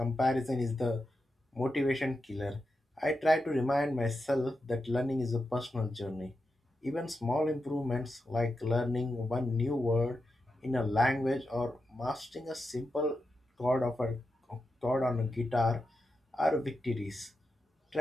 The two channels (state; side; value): normal; both; correlation 0.88